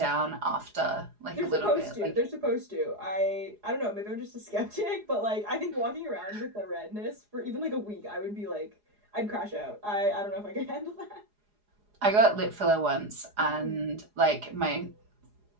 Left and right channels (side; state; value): left; late; 4.8 ms